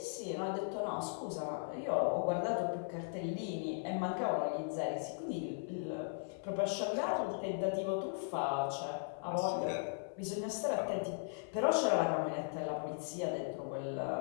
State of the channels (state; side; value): silent; right; 53 dB below the other